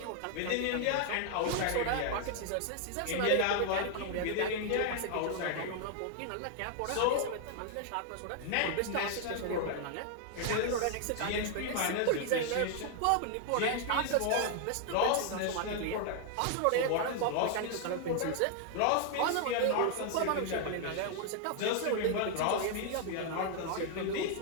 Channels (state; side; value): different; both; correlation 0.00